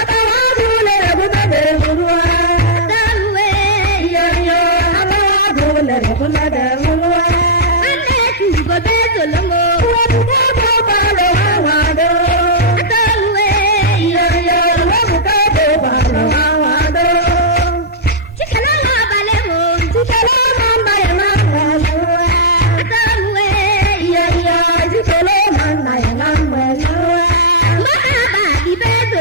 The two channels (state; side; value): normal; both; correlation -0.11